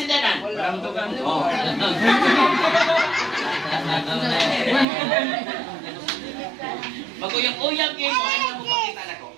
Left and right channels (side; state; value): left; drops out; at 4.9 s